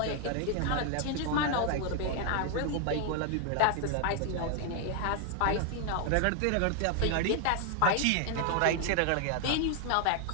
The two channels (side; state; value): both; different; correlation 0.00